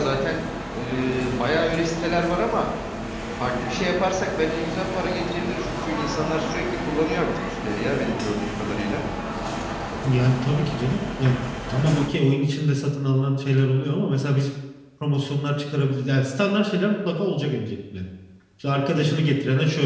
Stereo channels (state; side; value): identical; both; correlation 1.00